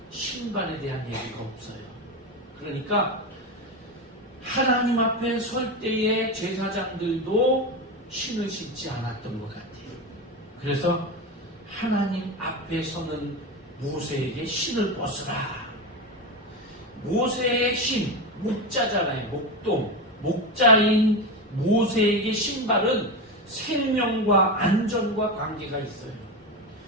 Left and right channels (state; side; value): normal; both; correlation 0.18